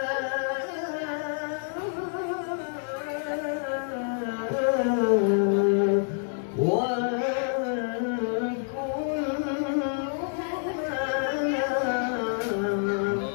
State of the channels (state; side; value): silent; right; digital silence